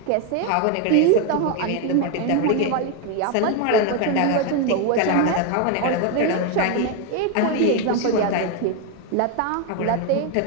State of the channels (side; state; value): both; different; correlation 0.02